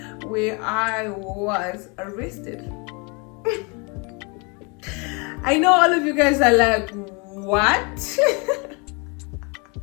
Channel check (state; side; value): quieter; right; 31.5 dB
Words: where I was arrested. I know all of you guys are like, what?